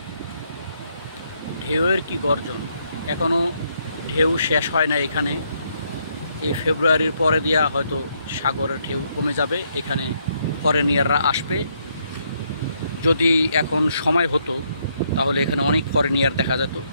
ঢেউয়ের কি গর্জন। এখনও ঢেউ শেষ হয় না এখানে। এই ফেব্রুয়ারির পরে দিয়া হয়তো সাগরের ঢেউ কমে যাবে, এখানে ফরেনিয়াররা আসবে। যদি এখন সময় হতো তাহলে এখানে অনেক ফরেনিয়ার দেখা যেত।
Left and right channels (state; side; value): inverted; both; correlation -0.74